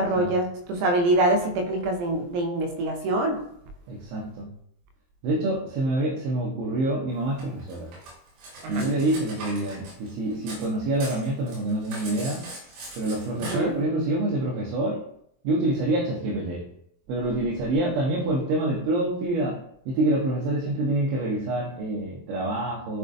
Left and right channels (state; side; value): late; left; 23 ms